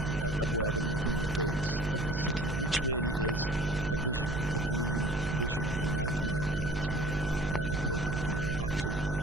Abwab al-Madina, gates of the city, which really is a vision, a dream vision, a nightmare perhaps more appropriately or aptly.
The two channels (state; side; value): noise; right; hum, 5 dB below the sound